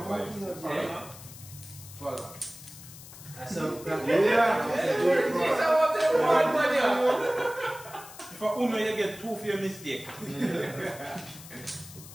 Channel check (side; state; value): left; noise; hiss, 16 dB below the sound